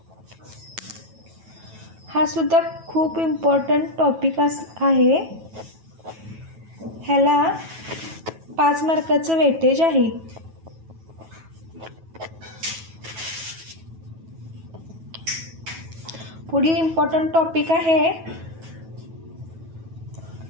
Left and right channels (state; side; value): late; left; 9.2 ms